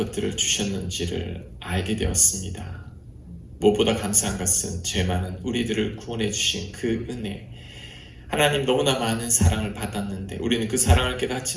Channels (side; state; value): both; identical; correlation 1.00